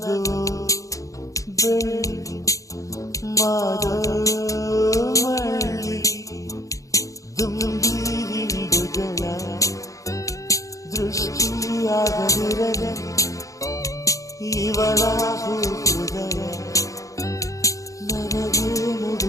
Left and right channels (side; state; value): right; late; 0.16 ms